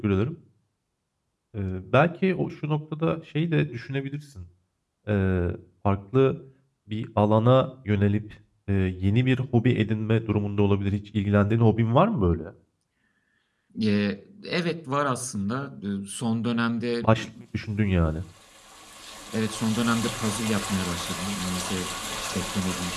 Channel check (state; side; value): identical; both; correlation 1.00